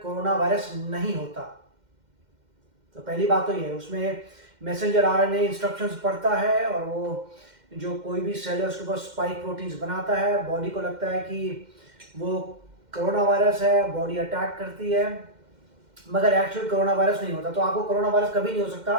कोरोना वायरस नहीं होता। तो पहली बात तो ये है, उसमें मैसेंजर आरएनए इंस्ट्रक्शंस पढ़ता है और वो जो कोई भी सेल है उसके ऊपर स्पाइक प्रोटीन्स बनाता है। बॉडी को लगता है कि वो कोरोना वायरस है, बॉडी अटैक करती है, मगर एक्चुअल कोरोना वायरस नहीं होता। तो आपको कोरोना वायरस कभी नहीं हो सकता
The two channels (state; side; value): late; left; 2.1 ms